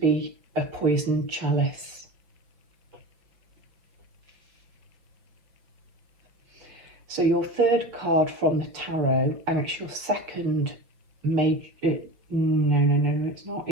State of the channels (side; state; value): left; late; 6.2 ms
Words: a poisoned chalice. So your third card from the tarot, and it's your second major, no, it's not.